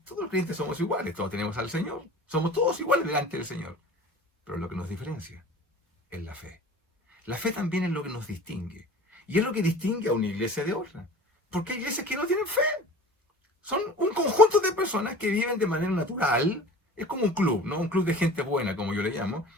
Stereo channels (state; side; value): normal; both; correlation 0.41